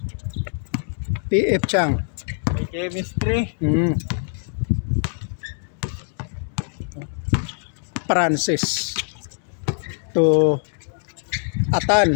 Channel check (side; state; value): right; silent; 62 dB below the other